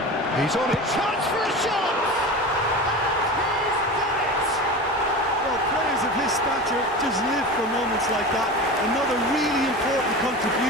He's on it. Chance for a shot! And he's done it! Well, players of his stature just live for moments like that. Another really important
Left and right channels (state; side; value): normal; both; correlation 0.30